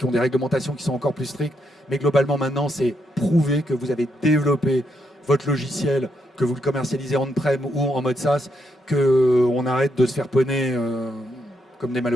ont des réglementations qui sont encore plus strictes. Mais globalement, maintenant, c'est prouvé que vous avez développé votre logiciel, que vous le commercialisez on-prem ou en mode SaaS, qu'on arrête de se faire poney comme des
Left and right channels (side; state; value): both; normal; correlation 0.79